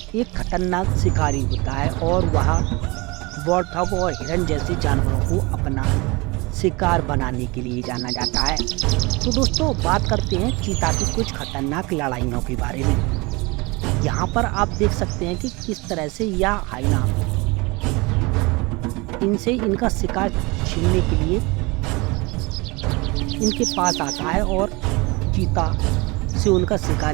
एक खतरनाक शिकारी होता है और वह वॉरथॉग और हिरन जैसे जानवरों को अपना शिकार बनाने के लिए जाना जाता है। तो दोस्तों बात करते हैं चीता की कुछ खतरनाक लड़ाइयों के बारे में। यहाँ पर आप देख सकते हैं कि किस तरह से यह हाइना इनसे इनका शिकार छीनने के लिए इनके पास आता है और चीता से उनका शिकार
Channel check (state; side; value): quieter; left; 25.3 dB